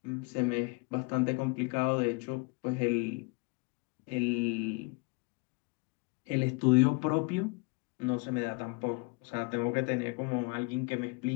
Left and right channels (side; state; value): right; quieter; 29.1 dB